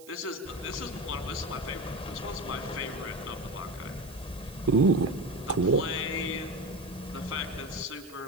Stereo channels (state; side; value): noise; right; hiss, 20 dB below the sound